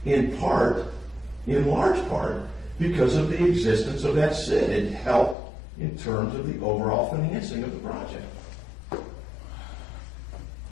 in large part, because of the existence of that CID. It helped in terms of the overall financing of the project.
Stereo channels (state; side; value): drops out; right; at 5.4 s